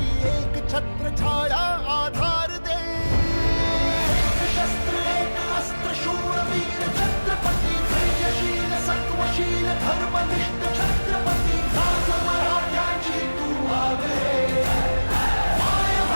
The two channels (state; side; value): inverted; both; correlation -1.00